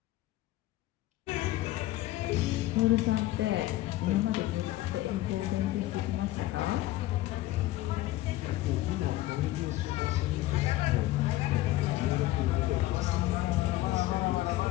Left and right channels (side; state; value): right; quieter; 16.5 dB